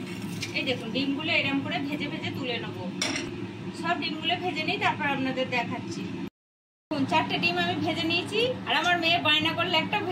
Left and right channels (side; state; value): both; identical; correlation 1.00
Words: এই দেখুন ডিমগুলো এরকম করে ভেজে ভেজে তুলে নেবো। সব ডিমগুলো ভেজে নিই, তারপর আপনাদের দেখাচ্ছি। 4টে ডিম আমি ভেজে নিয়েছি, আর আমার মেয়ে বায়না করলে একটা